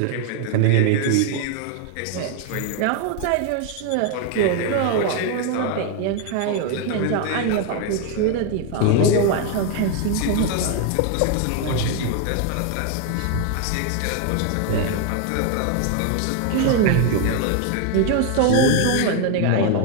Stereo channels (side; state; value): both; different; correlation 0.01